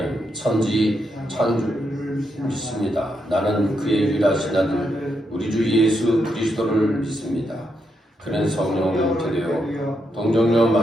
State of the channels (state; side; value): normal; both; correlation 0.81